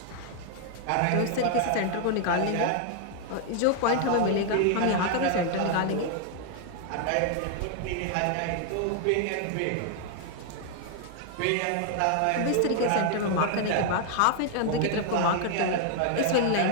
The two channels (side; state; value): both; different; correlation 0.00